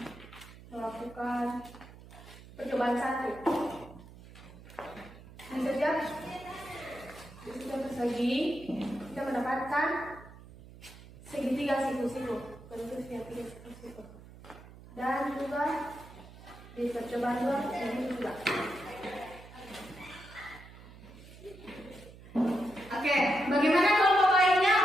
melakukan percobaan satu. Di setiap persegi kita mendapatkan segitiga siku-siku, bentuk segitiga siku-siku. Dan juga di percobaan dua ini juga. Oke, bagaimana kelompok lainnya?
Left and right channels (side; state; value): right; noise; hum, 18 dB below the sound